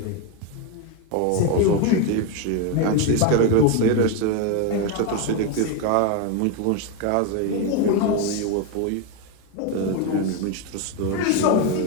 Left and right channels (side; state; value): both; different; correlation 0.02